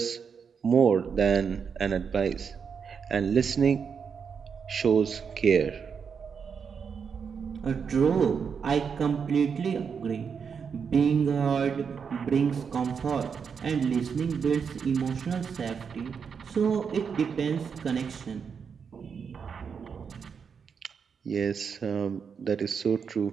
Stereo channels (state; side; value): quieter; left; 6.4 dB